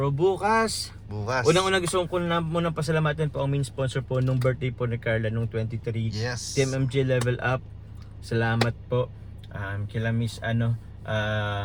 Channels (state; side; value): identical; both; correlation 1.00